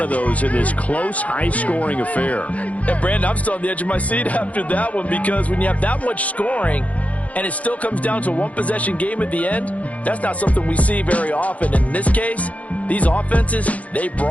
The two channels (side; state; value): right; late; 0.067 ms